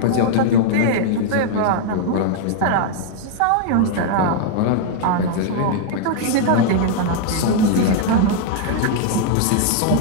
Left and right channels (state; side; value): different; both; correlation 0.00